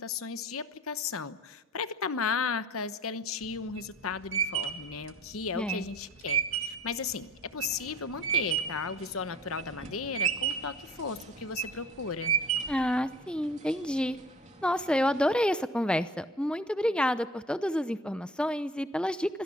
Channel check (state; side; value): normal; both; correlation 0.46